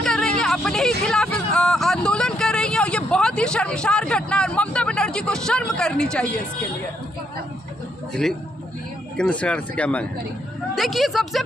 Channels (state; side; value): normal; both; correlation 0.75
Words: रही है, अपने ही खिलाफ आंदोलन कर रही है, और ये बहुत ही शर्मसार घटना है। ममता बनर्जी को शर्म करनी चाहिए इसके लिए। केंद्र सरकार से क्या मांग है? देखिए, सबसे